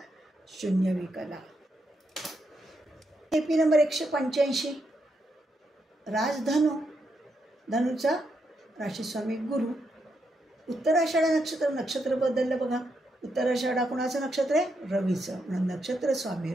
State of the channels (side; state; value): both; normal; correlation 0.81